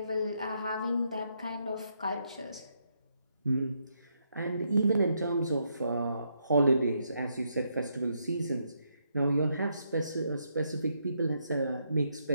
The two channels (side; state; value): both; inverted; correlation -0.78